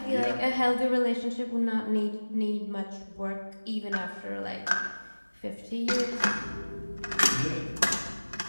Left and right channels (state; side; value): inverted; both; correlation -1.00